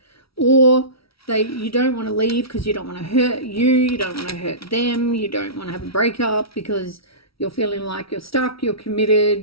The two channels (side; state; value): right; late; 0.75 ms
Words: or you don't want to leave because you don't want to hurt you don't want to hurt them, you don't want to have a breakup because you're feeling like you're stuck, you're committed,